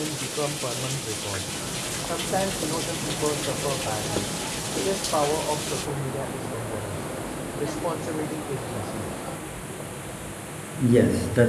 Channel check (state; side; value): identical; both; correlation 1.00